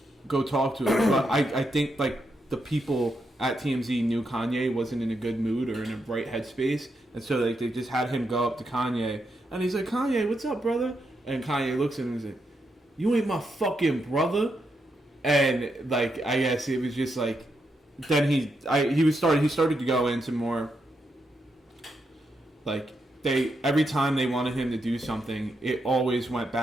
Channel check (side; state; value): both; normal; correlation 0.82